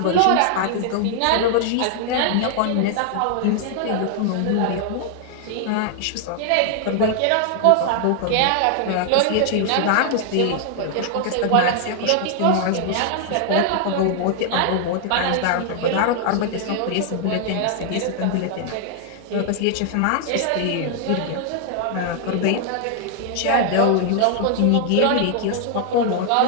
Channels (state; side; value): different; both; correlation 0.00